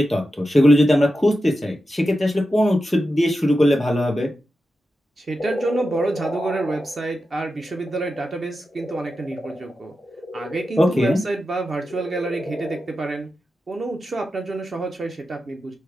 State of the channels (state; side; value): normal; both; correlation 0.90